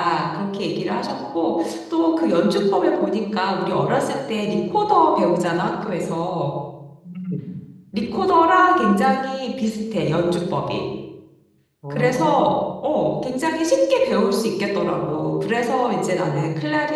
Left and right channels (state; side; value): identical; both; correlation 1.00